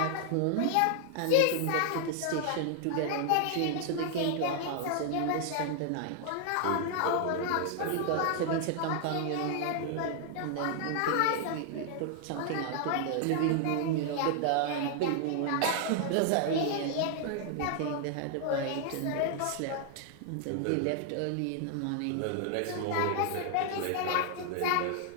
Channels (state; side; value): different; both; correlation 0.00